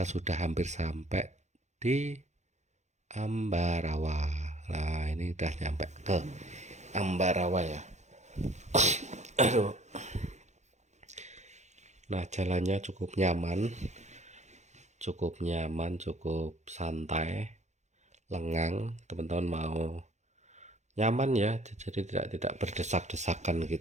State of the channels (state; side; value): late; left; 0.33 ms